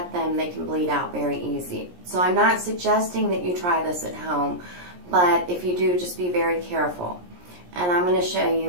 them, they can bleed out very easy. So I'm not suggesting that you try this at home, but if you do, just be very careful. And I'm going to show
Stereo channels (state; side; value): late; left; 17 ms